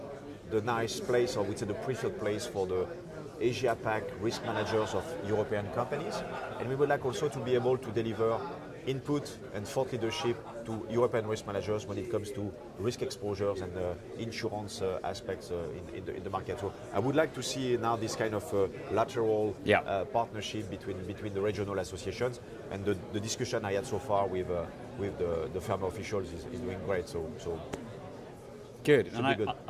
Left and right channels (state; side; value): identical; both; correlation 1.00